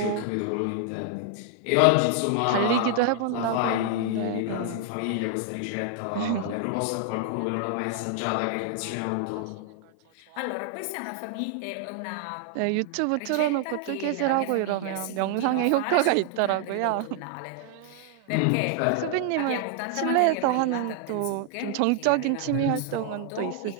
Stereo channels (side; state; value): both; different; correlation 0.00